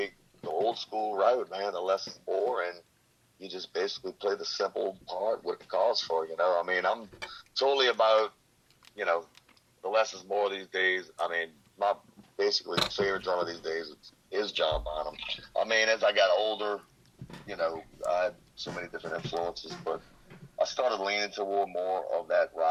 the old school route, man, the less is more, and you just basically play the simple part, what it calls for, I mean, I'm totally about, the less is more these days. I mean, my basically favorite drummer these days is John Bonham. I mean, as I got older, I had so many different influences, but I started leaning toward more of that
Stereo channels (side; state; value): both; identical; correlation 1.00